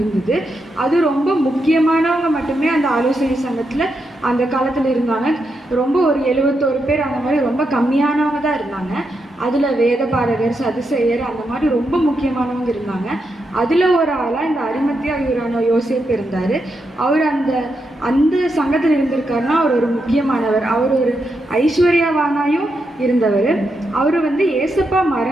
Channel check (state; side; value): normal; both; correlation 0.84